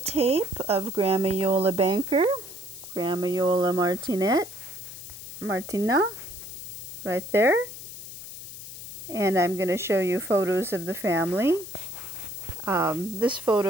of Grandma Iole Banker, Grandma Iole Martinat, right there. And I'm going to show you photos of the family. This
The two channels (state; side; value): noise; left; hiss, 13 dB below the sound